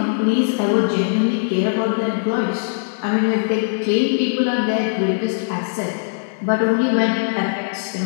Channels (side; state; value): right; silent; digital silence